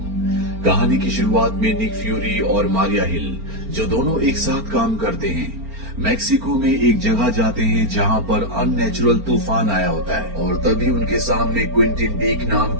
कहानी की शुरुआत में निक फ्यूरी और मारिया हिल, जो दोनों एक साथ काम करते हैं, मैक्सिको में एक जगह जाते हैं जहां पर अननेचुरल तूफान आया होता है और तभी उनके सामने क्विंटिन बीक नाम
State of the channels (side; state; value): left; late; 4.4 ms